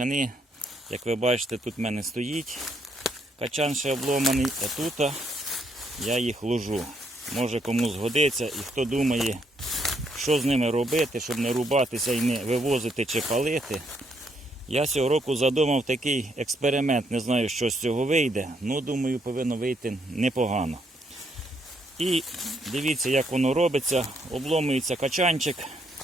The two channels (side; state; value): both; normal; correlation 0.74